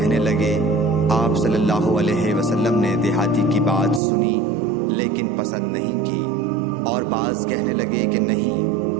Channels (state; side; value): drops out; left; at 4.0 s